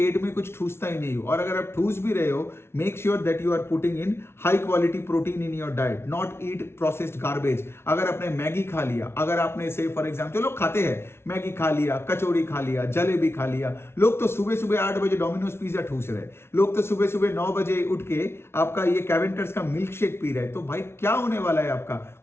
में कुछ ठूसता ही नहीं हूं। और अगर आप ठूस भी रहे हो, make sure that you are putting in high quality protein in your diet, not eat processed garbage. अगर आपने मैगी खा लिया, अगर आपने से फॉर एग्जाम्पल, लोग खाते हैं, मैगी खा लिया, कचौड़ी खा लिया, जलेबी खा लिया, लोग तो सुबह सुबह 8 बजे डोमिनोज पिज्जा ठूस रहे, लोग तो सुबह सुबह 9 बजे उठ के आपका ये कैवेंटर्स का मिल्क शेक पी रहे। तो भाई क्या होने वाला है आपका?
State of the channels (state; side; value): late; right; 0.12 ms